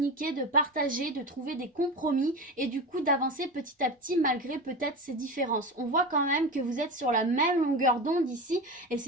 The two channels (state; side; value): normal; both; correlation 0.25